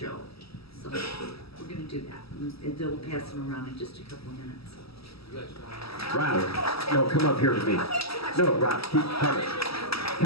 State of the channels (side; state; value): right; late; 0.77 ms